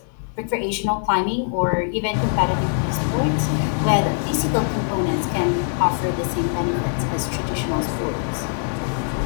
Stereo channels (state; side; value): silent; right; digital silence